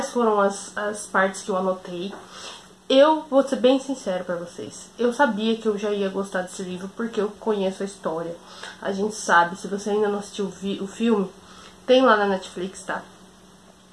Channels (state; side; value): identical; both; correlation 1.00